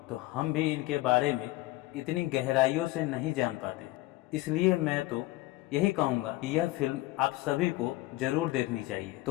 तो हम भी इनके बारे में इतनी गहराइयों से नहीं जान पाते। इसलिए मैं तो यही कहूँगा कि यह फिल्म आप सभी को जरूर देखनी चाहिए।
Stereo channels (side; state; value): right; quieter; 18.6 dB